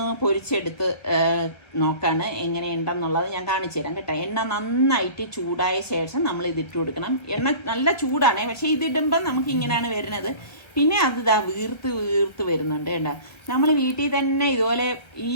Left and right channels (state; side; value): late; right; 1.1 ms